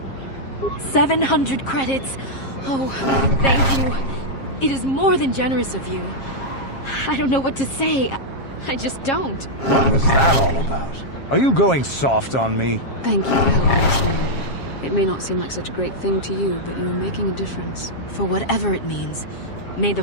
700 credits. Oh, thank you. It is more than generous of you. I don't know what to say. I just don't. What was that all about? Are you going soft on me? Thank you for helping us, man. It may not seem like such a great thing to you, but you are making a difference. For whatever it means, may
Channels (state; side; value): late; right; 7.4 ms